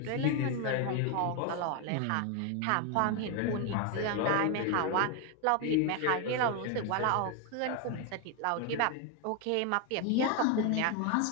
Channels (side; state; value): both; different; correlation 0.01